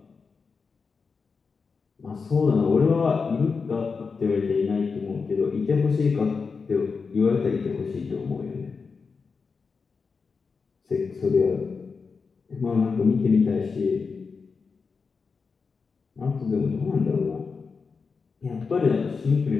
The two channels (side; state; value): right; quieter; 5.0 dB